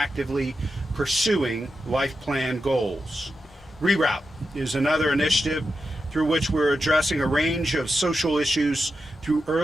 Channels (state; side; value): normal; both; correlation 0.89